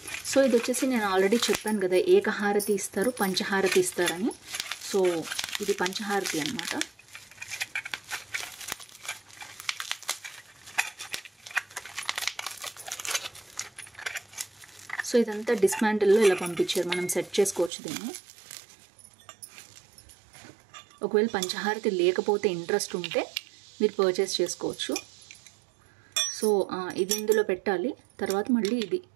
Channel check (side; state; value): left; drops out; at 17.7 s